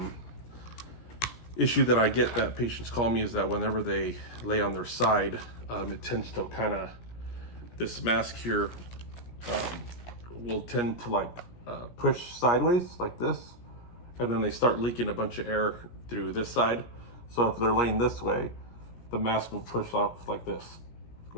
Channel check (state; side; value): late; right; 17 ms